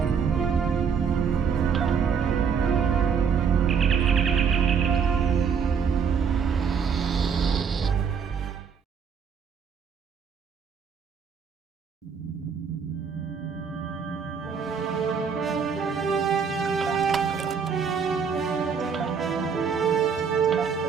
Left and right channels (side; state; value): left; quieter; 6.5 dB